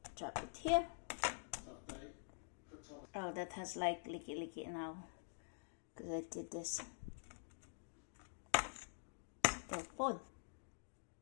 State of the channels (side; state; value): right; silent; digital silence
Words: drop it here. Oh, that has like liki-liki now. Because I did this. Telephone.